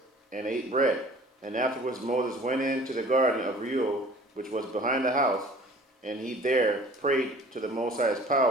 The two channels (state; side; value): normal; both; correlation 0.48